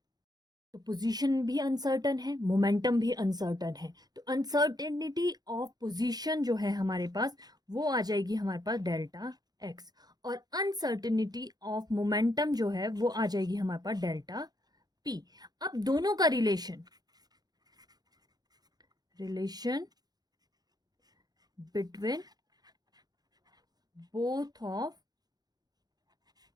तो पोजीशन भी अनसर्टन है, मोमेंटम भी अनसर्टन है। तो अनसर्टेनिटी ऑफ पोजीशन जो है हमारे पास वो आ जाएगी हमारे पास डेल्टा एक्स, और अनसर्टेनिटी ऑफ मोमेंटम जो है वो आ जाएगी हमारे पास डेल्टा पी। अब दोनों का relation between both of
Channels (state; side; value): late; left; 0.19 ms